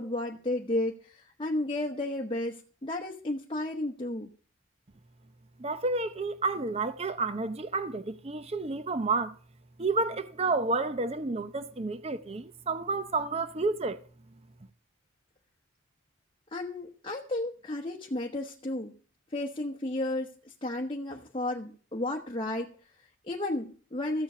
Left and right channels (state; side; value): normal; both; correlation 0.22